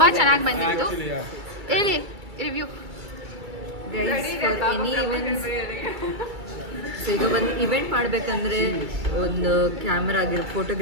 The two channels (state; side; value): late; left; 2.3 ms